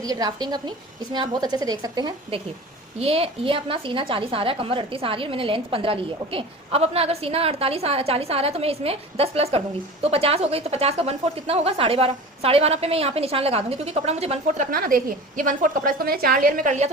ड्राफ्टिंग अपनी, इसमें आप बहुत अच्छे से देख सकते हैं। देखिए ये अपना सीना 40 आ रहा है, कमर 38 आ रही है, मैंने लेंथ 15 ली है। ओके, अब अपना अगर सीना 40 आ रहा है तो मैं इसमें 10 प्लस कर दूंगी तो 50 हो गई। तो 50 का 1/4 कितना होगा? 12.5। 12.5 पे मैं यहाँ पे निशान लगा दूंगी, क्योंकि कपड़ा मुझे 1/4 रखना ना। देखिए ये 1/4 कपड़ा, इसको मैंने 4 लेयर में कर लिया,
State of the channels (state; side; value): normal; both; correlation 0.36